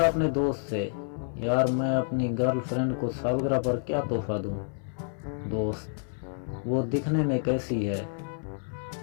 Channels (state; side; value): silent; right; 59 dB below the other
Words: دوست سے، یار میں اپنی گرل فرینڈ کو سالگرہ پر کیا تحفہ دوں؟ دوست، وہ دکھنے میں کیسی ہے؟